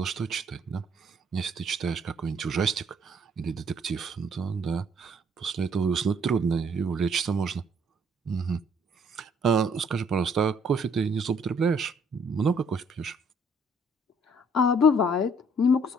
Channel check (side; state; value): both; normal; correlation 0.64